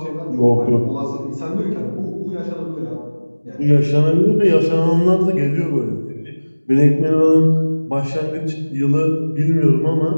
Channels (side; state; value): both; inverted; correlation -1.00